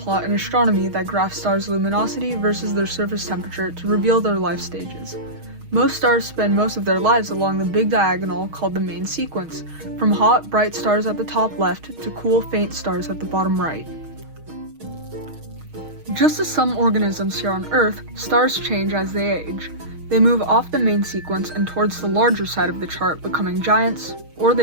in astronomy that graphs stars' luminosity versus their surface temperature to reveal their life stages. Most stars spend most of their lives along the big diagonal called the main sequence, from hot, bright stars at the top left to cool, faint stars at the bottom right. Just as some organisms here on Earth, stars change as they age. They move off the main sequence and towards the larger side of the chart, becoming giants, or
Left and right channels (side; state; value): left; late; 6.4 ms